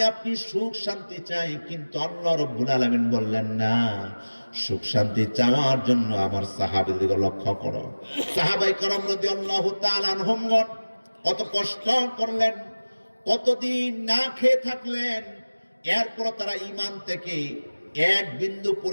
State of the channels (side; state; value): both; inverted; correlation -1.00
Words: আপনি সুখ শান্তি চাই, কিন্তু আল্লাহ রাব্বুল আলামিন বললেন না। সুখ শান্তি চাওয়ার জন্য আমার সাহাবীদেরকে লক্ষ্য করো। সাহাবায়ে কেরাম রাদিয়াল্লাহু তাআলা আনহুমগণ কত কষ্ট করলেন, কতদিন না খেয়ে থাকলেন, এরপর তারা ঈমান থেকে এক বিন্দু